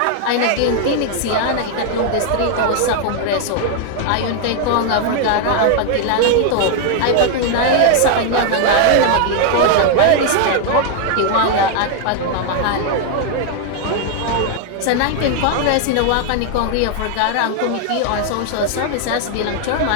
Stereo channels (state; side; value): different; both; correlation 0.00